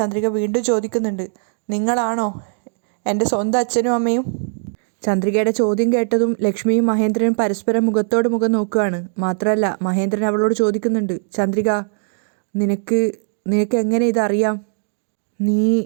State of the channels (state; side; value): silent; left; 59 dB below the other